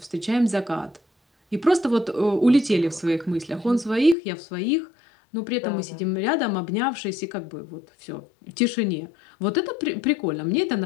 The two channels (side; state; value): right; drops out; at 4.2 s